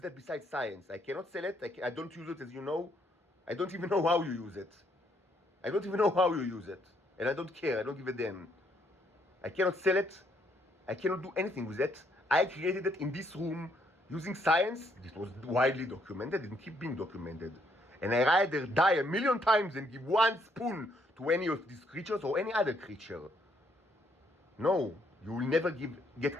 that besides science. I cannot sell it. I don't use it, as you know. I don't even know how you use it. I don't even know how you use it. And I don't care. I don't give a damn. I cannot sell it. I cannot do anything with it. I created it in this room using science. This was widely documented and keep being documented. And I rather die 1,000,000 times than give one spoon to any of these creatures or any other creature. No, you will never get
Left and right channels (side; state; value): both; normal; correlation 0.71